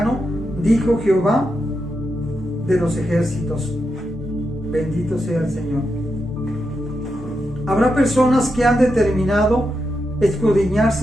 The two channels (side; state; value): both; normal; correlation 0.86